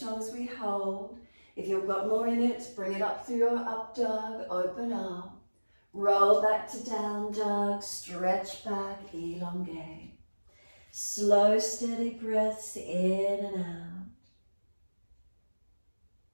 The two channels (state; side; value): inverted; both; correlation -1.00